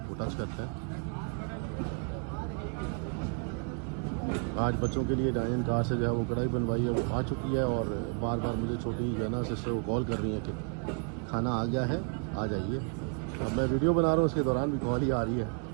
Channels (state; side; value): quieter; left; 38.2 dB